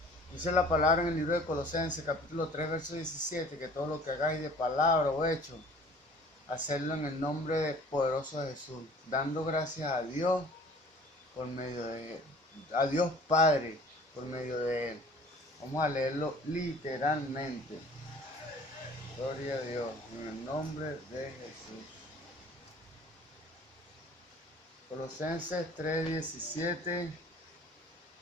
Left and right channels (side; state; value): both; normal; correlation 0.49